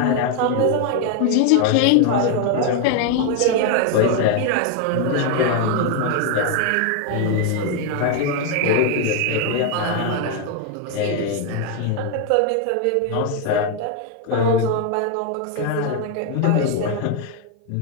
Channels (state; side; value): different; both; correlation 0.01